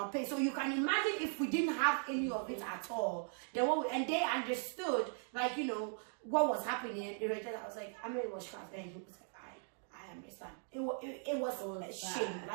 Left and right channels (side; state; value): left; silent; 52 dB below the other